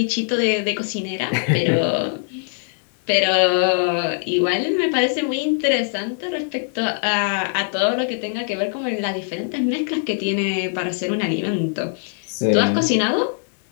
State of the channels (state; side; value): silent; right; 65 dB below the other